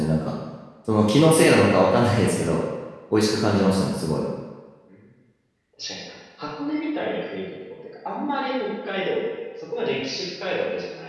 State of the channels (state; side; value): identical; both; correlation 1.00